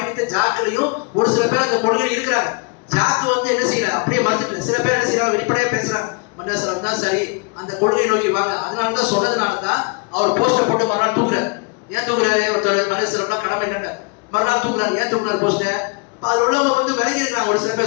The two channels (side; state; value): right; quieter; 31.6 dB